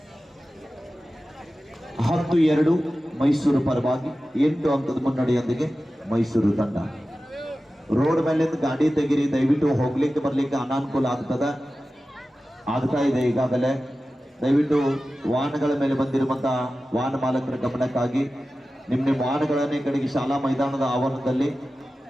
10-2 Mysuru ಪರವಾಗಿ 8 ಅಂಕದ ಮುನ್ನಡೆಯೊಂದಿಗೆ ಮೈಸೂರು ತಂಡ. ರೋಡ್ ಮೇಲಿಂದ ಗಾಡಿ ತೆಗಿರಿ, ದಯವಿಟ್ಟು ಹೋಗ್ಲಿಕ್ಕೆ ಬರ್ಲಿಕ್ಕೆ ಅನಾನುಕೂಲ ಆಗ್ತಾ ಇದೆ ಈಗಾಗಲೇ. ದಯವಿಟ್ಟು ವಾಹನಗಳ ಮೇಲೆ ಬಂದಿರುವಂತಹ ವಾಹನ ಮಾಲಕರ ಗಮನಕ್ಕಾಗಿ ನಿಮ್ಮ ವಾಹನಗಳನ್ನೇ ಕಡೆಗೆ ಶಾಲಾ ಮೈದಾನದ ಆವರಣದಲ್ಲಿ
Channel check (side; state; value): both; normal; correlation 0.95